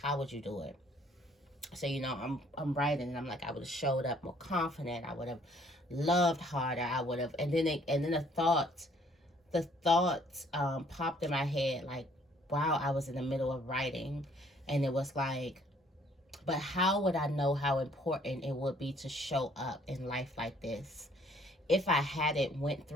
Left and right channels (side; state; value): both; normal; correlation 0.62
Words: would you do it? So, I'm writing, and I'm like, I would have showed up more confident. I would have loved harder. I would have, and then the thought popped in my head, like, wow, I was in the middle of writing, and it was like, but how would I know how important it would be to show up in life like this if I hadn't went